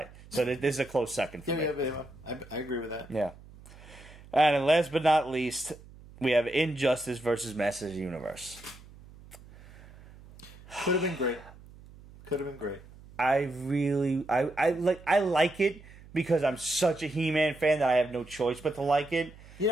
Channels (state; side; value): noise; right; hum, 21 dB below the sound